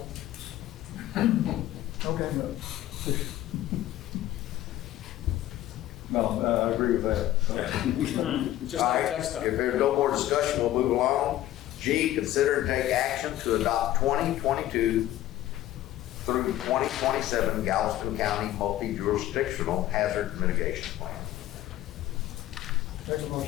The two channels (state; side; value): quieter; right; 14.1 dB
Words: Okay, No, I agree with that. Just All like right, text if there's no more discussion, we'll move along. G, consider and take action to adopt 2022 through 2027 Galveston County multi-jurisdictional hazard mitigation plan. Make a